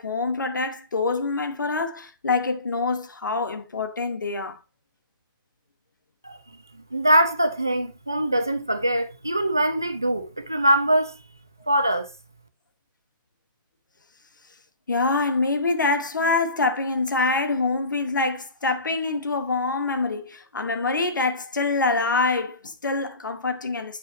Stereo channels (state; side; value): inverted; both; correlation -0.51